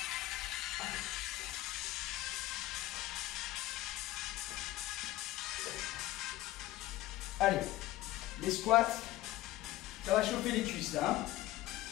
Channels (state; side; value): quieter; right; 16.5 dB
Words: Allez, les squats, ça va chauffer les cuisses là. Hein.